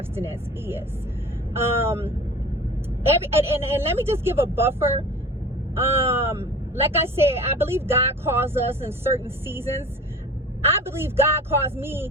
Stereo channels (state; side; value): normal; both; correlation 0.39